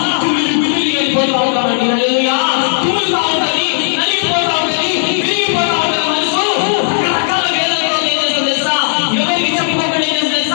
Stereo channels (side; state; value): right; silent; 71 dB below the other